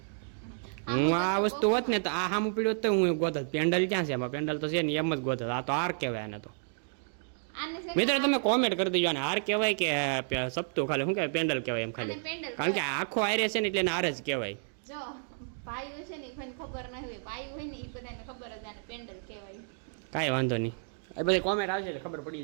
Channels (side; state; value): left; silent; digital silence